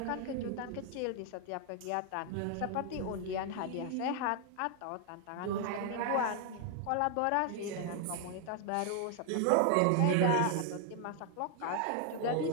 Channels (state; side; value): different; both; correlation 0.00